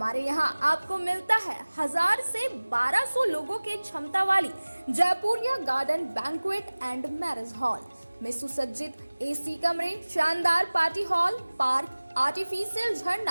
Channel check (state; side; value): inverted; both; correlation -1.00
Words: यहाँ आपको मिलता है 1000 से 1200 लोगों की क्षमता वाली Jaipuria garden banquet and marriage hall में सुसज्जित एसी कमरे, शानदार पार्टी हॉल, पार्क, आर्टिफिशियल